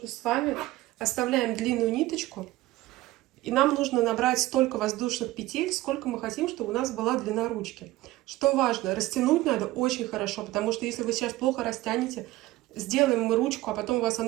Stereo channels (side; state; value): left; quieter; 17.3 dB